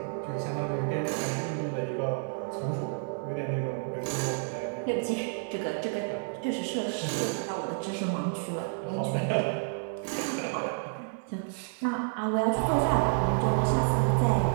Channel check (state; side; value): silent; left; digital silence